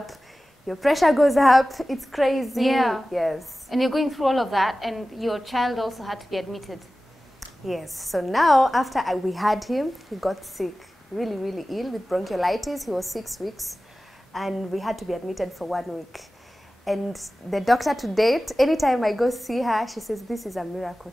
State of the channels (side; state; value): both; normal; correlation 0.96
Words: Your pressure goes up. It's crazy. Yeah. Yes. And you're going through all of that, and your child also had to be admitted. Yes. So now, after we had him, he got sick, really, really ill with bronchiolitis. He was 6 weeks, and we had to be admitted for 1 week. And the doctor to date, anytime I go see her, she says, this is a miracle